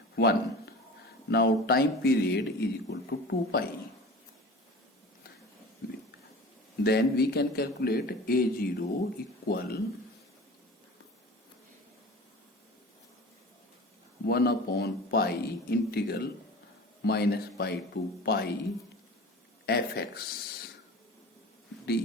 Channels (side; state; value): both; normal; correlation 0.38